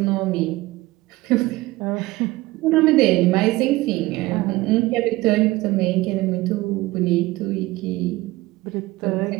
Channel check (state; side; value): quieter; left; 19.2 dB